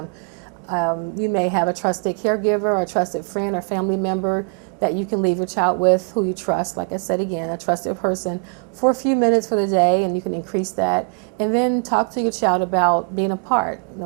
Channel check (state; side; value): quieter; left; 37.9 dB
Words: You may have a trusted caregiver or a trusted friend or family member that you can leave your child with, who you trust. Like I said again, a trusted person, for a few minutes for the day, and you can increase that. And then talk to your child about being apart.